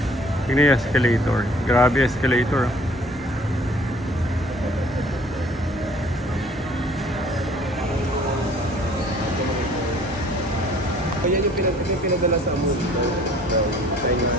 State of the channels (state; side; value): normal; both; correlation 0.54